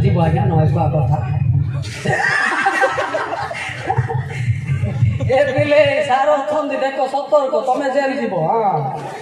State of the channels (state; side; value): identical; both; correlation 1.00